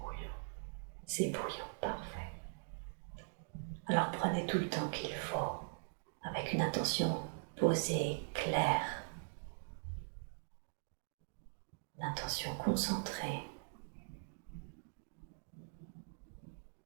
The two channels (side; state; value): left; silent; digital silence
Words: C'est bouillant, parfait. Alors prenez tout le temps qu'il faut, avec une intention posée, claire, une intention concentrée.